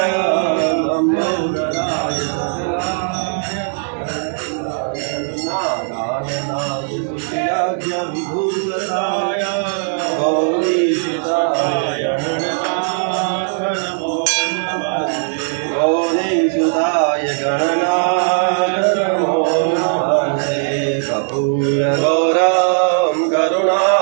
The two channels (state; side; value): silent; left; digital silence